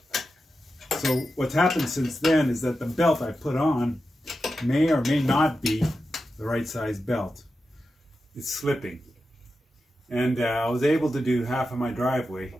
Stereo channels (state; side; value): normal; both; correlation 0.90